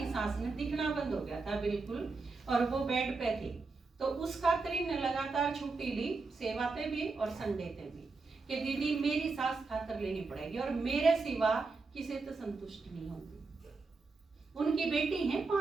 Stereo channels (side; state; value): left; quieter; 4.0 dB